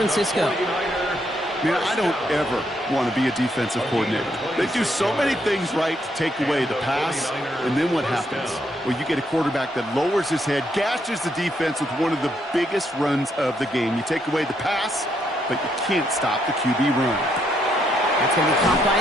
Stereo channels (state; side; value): normal; both; correlation 0.75